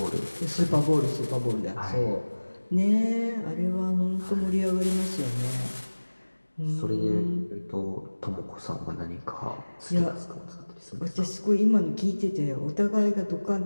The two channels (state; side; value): inverted; both; correlation -1.00